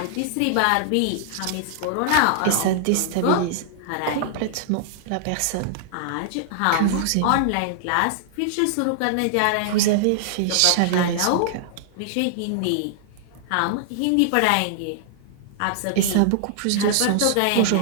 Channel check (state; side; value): different; both; correlation -0.01